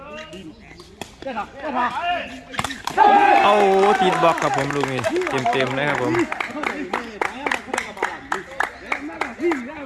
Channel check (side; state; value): both; identical; correlation 1.00